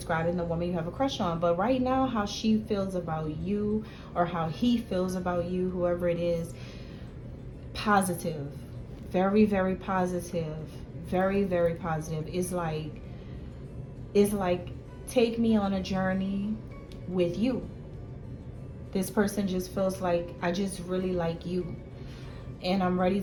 the woman you have a crush on. But right now, how she feels about you, or how he feels about you, whoever it is, positive. Very, very positive. Very, very positive. It's like, take me on a journey with you. This person just feels like, I just really like you, and I'm ready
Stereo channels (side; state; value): both; identical; correlation 1.00